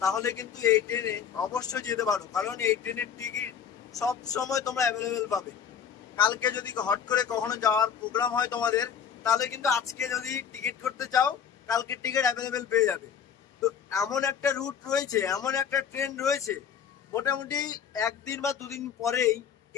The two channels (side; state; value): right; quieter; 7.9 dB